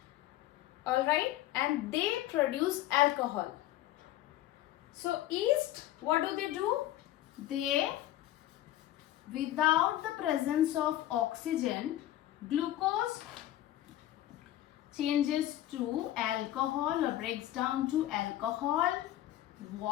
Alright, and they produce alcohol. So yeast, what do? They, without the presence of oxygen, glucose changes to alcohol or breaks down to alcohol,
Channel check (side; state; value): right; quieter; 13.9 dB